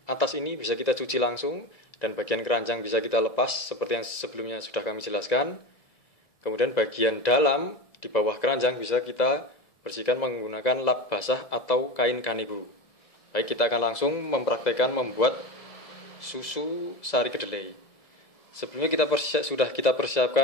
atas ini bisa kita cuci langsung, dan bagian keranjang bisa kita lepas seperti yang sebelumnya sudah kami jelaskan. Kemudian bagian dalam di bawah keranjang bisa kita bersihkan menggunakan lap basah atau kain kanibu. Baik, kita akan langsung mempraktekkan membuat susu sari kedelai. Sebelumnya sudah kita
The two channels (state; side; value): late; right; 1.7 ms